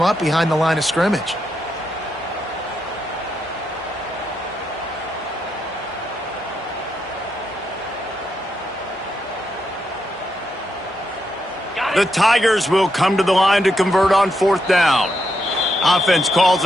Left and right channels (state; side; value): normal; both; correlation 0.82